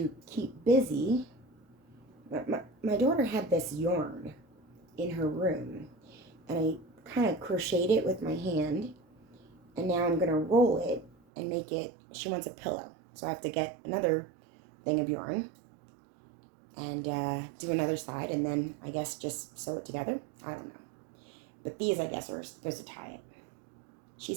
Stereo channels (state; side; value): drops out; left; at 11.2 s